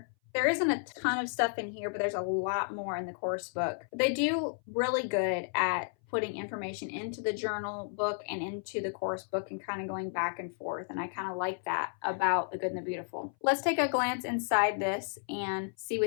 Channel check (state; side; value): silent; right; 56 dB below the other